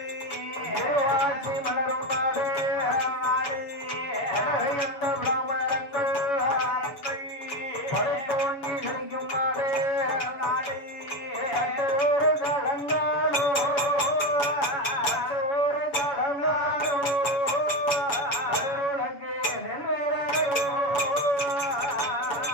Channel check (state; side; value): late; right; 6.9 ms